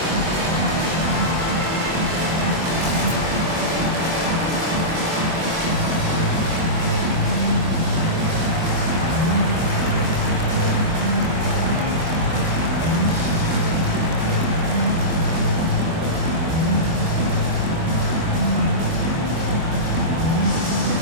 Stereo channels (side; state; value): left; late; 24 ms